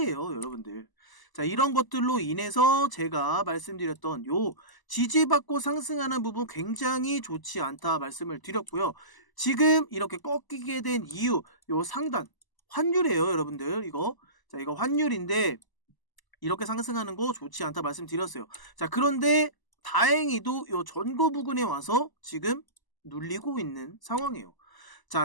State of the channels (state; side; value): late; right; 1.0 ms